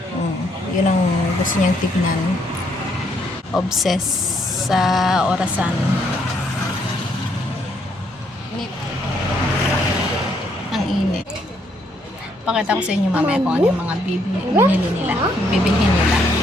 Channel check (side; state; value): both; normal; correlation 0.71